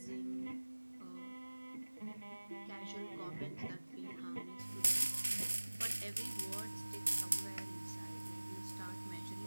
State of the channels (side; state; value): both; inverted; correlation -1.00